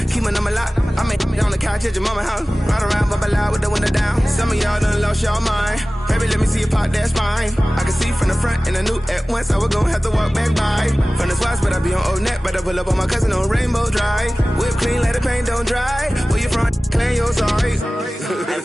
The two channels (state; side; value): normal; both; correlation 0.97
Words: keep my number locked. I made on the couch at your mama house. Ride around, bubble loud with the window down. Some of y'all done lost y'all mind. Baby, let me see you pop that spine. I can see from the front and I knew at once I was gonna have to walk back by. From the spots, but I be on Old Net. But I pull up on my cousin on Rainbow Drive. Whip clean, let the paint don't dry. Where you from? Clean your sorry. Pull